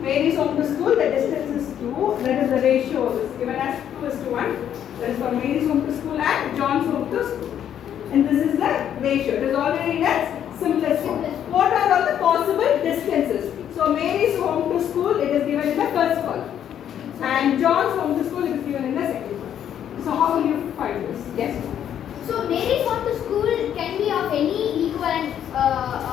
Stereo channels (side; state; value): right; quieter; 9.8 dB